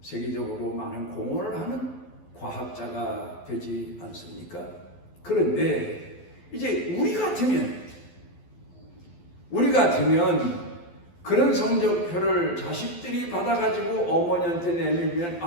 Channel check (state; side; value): late; right; 12 ms